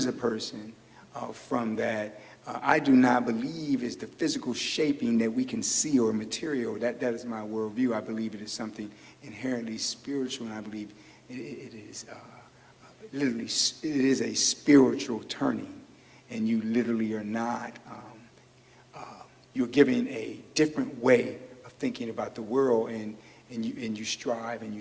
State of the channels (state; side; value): identical; both; correlation 1.00